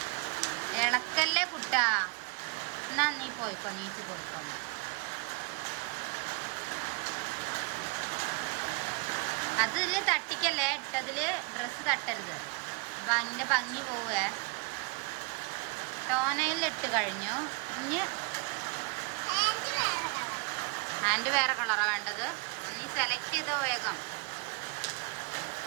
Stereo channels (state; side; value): quieter; left; 31.3 dB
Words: ഇളക്കല്ലേ കുട്ടാ. എന്നാ നീ പോയിക്കോ, നീച്ച് പോയിക്കോ. അതില് തട്ടിക്കല്ലേ, ഇട്ടതില് ഡ്രസ്സ് തട്ടരുത്, അതിൻ്റെ ഭംഗി പോവേ. ടോനയിൽ ഇട്ട് കഴിഞ്ഞു. ഇനി ഹാൻഡ് വേറെ കളറാ വേണ്ടത്. നീ സെലക്ട് ചെയ്തോ വേഗം.